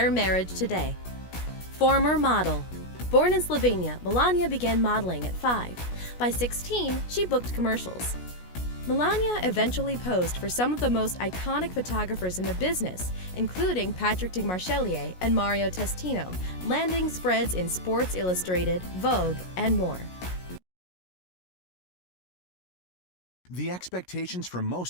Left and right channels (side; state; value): right; late; 16 ms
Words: marriage today. Former model. Born in Slovenia, Melania began modeling at 5. By 16, she booked commercials. Melania eventually posed for some of the most iconic photographers in the business, including Patrick de Marchelier and Mario Testino, landing spreads in Sports Illustrated, Vogue, and more. The expectations for